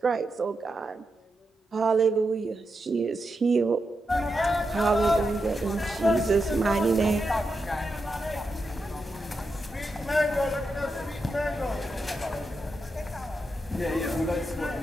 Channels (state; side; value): normal; both; correlation 0.86